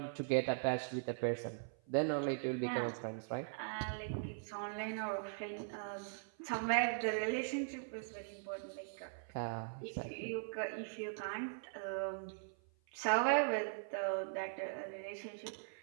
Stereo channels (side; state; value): left; silent; 51 dB below the other